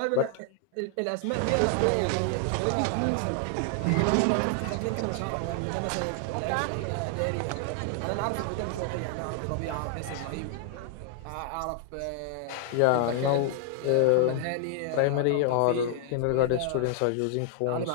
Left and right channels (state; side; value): different; both; correlation 0.00